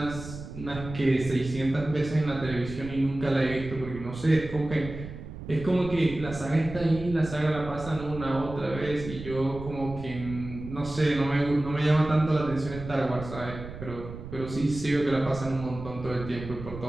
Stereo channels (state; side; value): noise; right; rumble, 11 dB below the sound